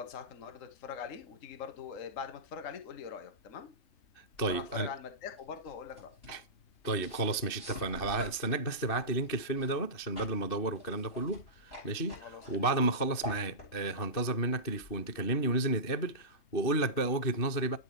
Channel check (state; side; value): late; right; 2.7 ms